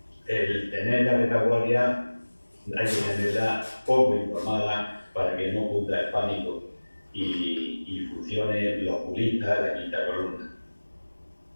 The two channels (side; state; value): both; inverted; correlation -1.00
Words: el tener la retaguardia, hay que tenerla poco informada para que no cunda el pánico y funcione los oculistas de la quinta columna.